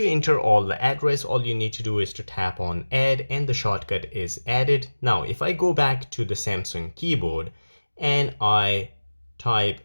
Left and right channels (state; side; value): inverted; both; correlation -1.00